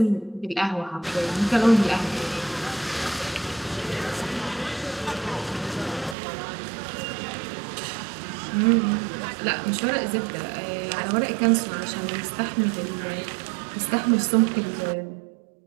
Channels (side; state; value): left; drops out; at 6.2 s